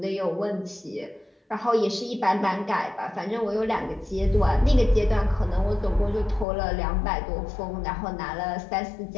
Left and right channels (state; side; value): drops out; right; at 6.5 s